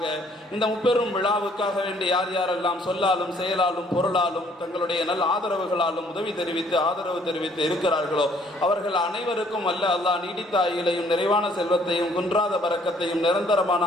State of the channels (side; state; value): both; normal; correlation 0.62